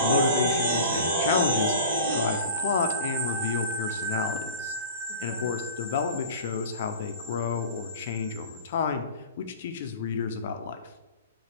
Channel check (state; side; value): inverted; both; correlation -0.38